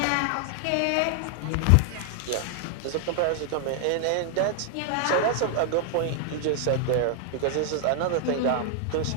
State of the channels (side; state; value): both; different; correlation 0.00